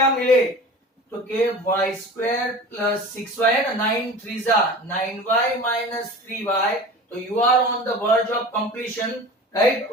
मिले, तो के y स्क्वायर प्लस 6y है ना, 9 3 जा 9y माइनस 3y, तो you are on the verge of completion, right?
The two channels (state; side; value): normal; both; correlation 0.37